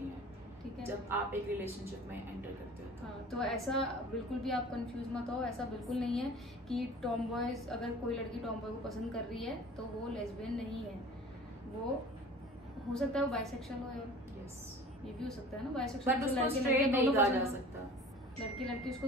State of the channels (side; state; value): both; normal; correlation 0.43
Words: हैं, ठीक है, जब आप एक रिलेशनशिप में एंटर करते हो। हाँ, तो ऐसा बिल्कुल भी आप कंफ्यूज मत हो। ऐसा बिल्कुल नहीं है कि टॉम बॉयज, अगर कोई लड़की टॉम बॉय को पसंद कर रही है तो वो लेस्बियन नहीं है। वो हो सकता है वो बाइसेक्सुअल हो, यार यस, ये भी हो सकता है ना, बाइसेक्सुअल लड़की लड़की उसको